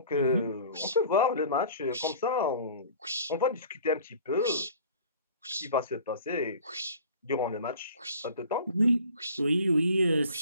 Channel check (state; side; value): inverted; both; correlation -0.46